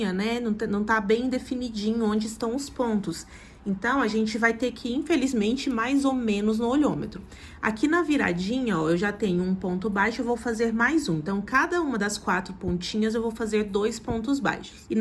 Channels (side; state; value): both; identical; correlation 1.00